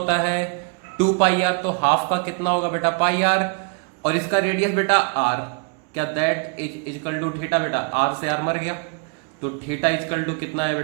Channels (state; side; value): quieter; left; 36.1 dB